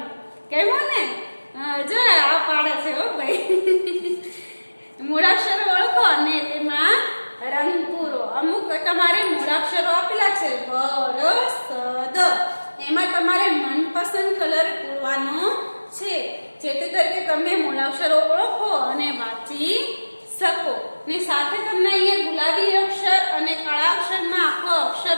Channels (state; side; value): inverted; both; correlation -1.00